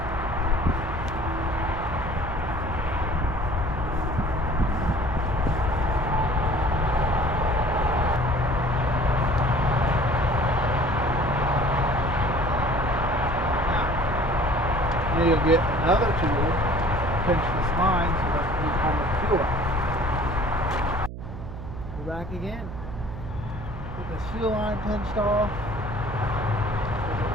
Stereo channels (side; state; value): right; noise; hum, 10 dB below the sound